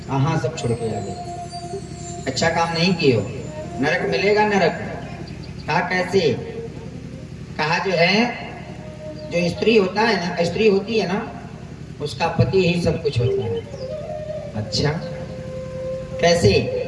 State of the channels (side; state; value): both; identical; correlation 1.00